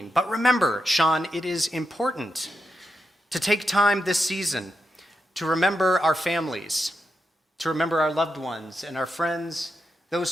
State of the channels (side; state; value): both; normal; correlation 0.86